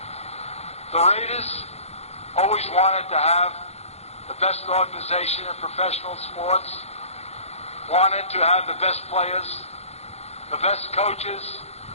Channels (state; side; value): late; right; 0.31 ms